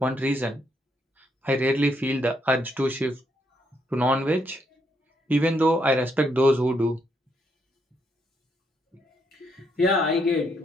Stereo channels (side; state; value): both; normal; correlation 0.75